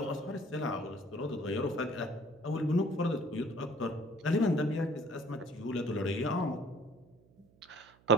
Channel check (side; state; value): right; noise; hum, 29 dB below the sound